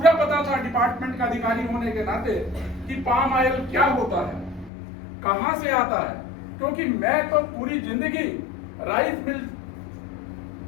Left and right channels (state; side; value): drops out; right; at 4.7 s